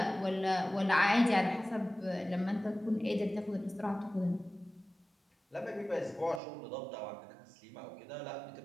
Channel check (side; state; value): left; drops out; at 6.4 s